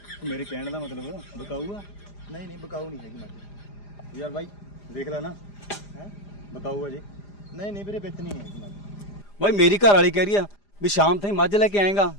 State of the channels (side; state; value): right; late; 4.9 ms